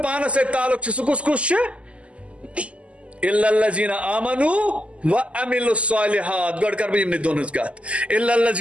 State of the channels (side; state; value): left; late; 0.059 ms